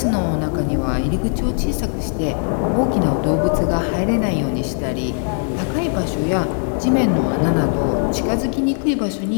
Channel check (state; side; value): silent; right; 65 dB below the other